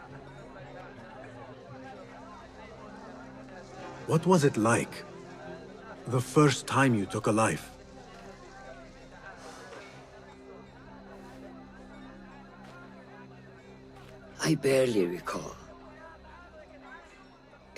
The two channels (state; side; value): identical; both; correlation 1.00